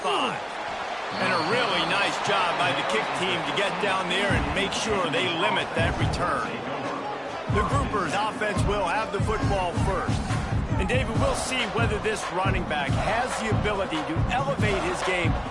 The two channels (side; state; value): both; identical; correlation 1.00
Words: 5. And a really nice job by the kick team to get down there and make sure they limit that return. The Groupers offense will have the football first. And David, we'll see whether this running back has the ability to elevate his game